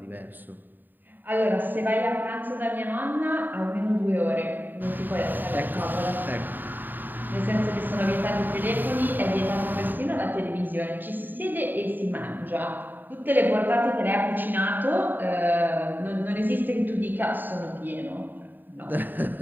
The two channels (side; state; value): left; late; 0.090 ms